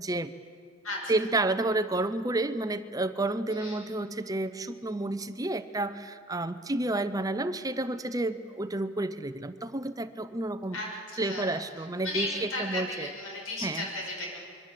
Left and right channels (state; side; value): normal; both; correlation 0.49